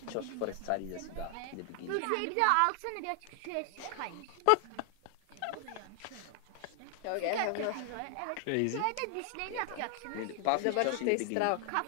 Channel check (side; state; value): both; different; correlation 0.00